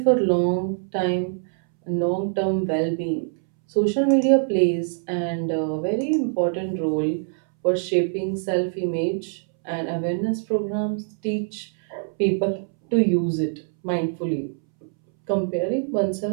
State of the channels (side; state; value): left; silent; 63 dB below the other